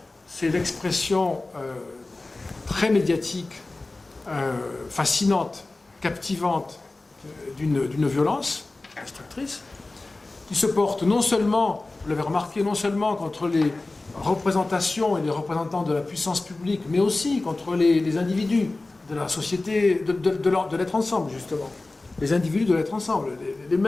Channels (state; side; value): quieter; right; 3.1 dB